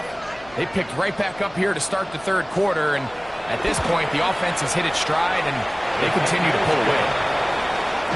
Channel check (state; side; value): noise; left; hum, 24 dB below the sound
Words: they picked right back up here to start the third quarter, and at this point, the offense has hit its stride, and they continue to pull away.